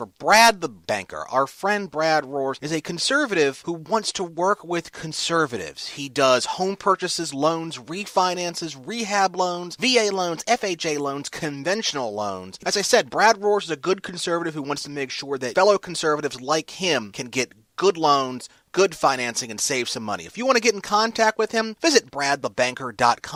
Brad the Banker. Our friend Brad Roars is a conservative who wants to work with conservatives. He does home purchases, loans, refinances, rehab loans, VA loans, FHA loans, conventional loans. As I said, Brad Roars is a good conservative who wants to make sure that fellow conservatives like him can get good loans, good financing, and save some money. If you want to get in contact with him, visit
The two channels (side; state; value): both; identical; correlation 1.00